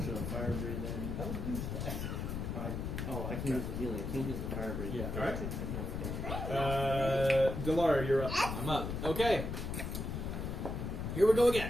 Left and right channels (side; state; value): left; noise; rumble, 4 dB below the sound